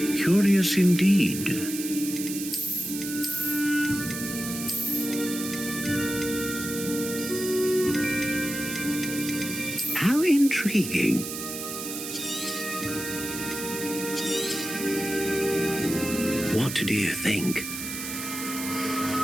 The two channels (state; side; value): noise; right; hiss, 7 dB below the sound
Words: Curious indeed. How intriguing. What do you think?